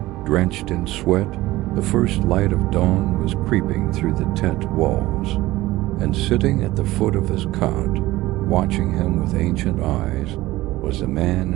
drenched in sweat, the first light of dawn was creeping through the tent walls. And sitting at the foot of his cot, watching him with ancient eyes, was the man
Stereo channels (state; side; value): quieter; left; 17.7 dB